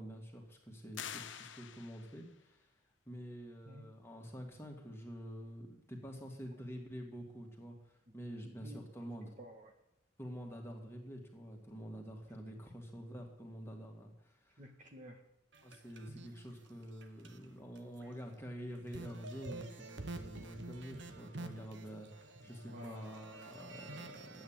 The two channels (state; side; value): normal; both; correlation 0.73